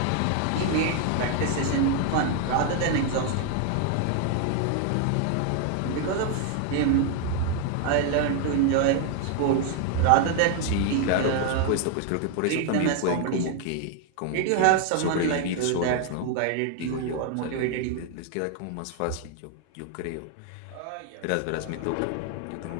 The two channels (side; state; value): both; different; correlation 0.00